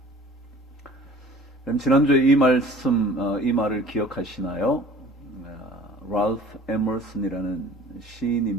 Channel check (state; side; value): normal; both; correlation 0.48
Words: 그럼 지난주에 이 말을 기억하시나요? 랄프 에머슨이라는